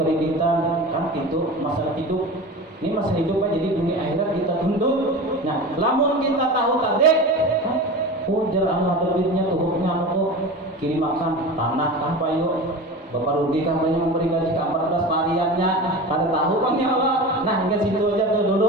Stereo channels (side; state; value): both; normal; correlation 0.31